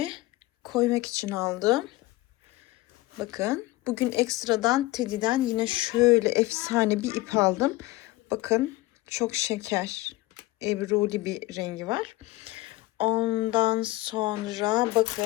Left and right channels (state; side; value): quieter; right; 18.7 dB